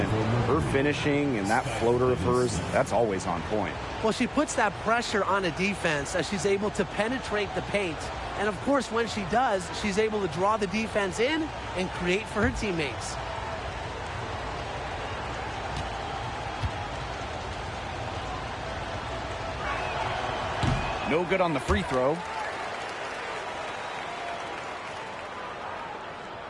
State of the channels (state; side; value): identical; both; correlation 1.00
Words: her finishing and that floater of hers, that's always on point. Well, she puts that pressure on a defense as she's able to penetrate the paint. And, of course, when she does, she's able to draw the defense in and create for her teammates. No good on the free throw.